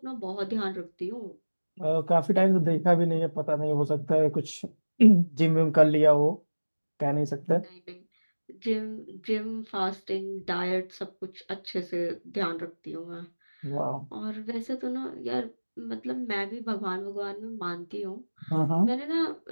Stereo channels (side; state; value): both; inverted; correlation -1.00